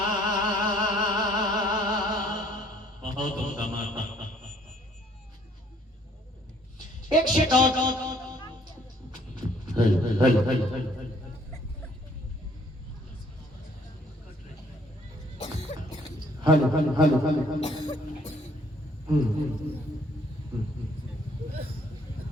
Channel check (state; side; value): normal; both; correlation 0.62